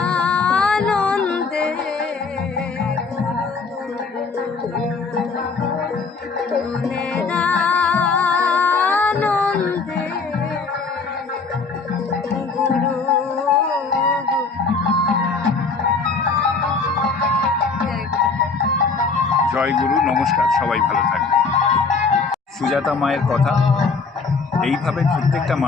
আনন্দে মনের আনন্দে গুরু। জয় গুরু, নমস্কার, সবাই ভালো থাকবেন। সুজাতা মায়ের কথা, এইভাবে প্রত্যেকটা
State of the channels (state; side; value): quieter; right; 4.6 dB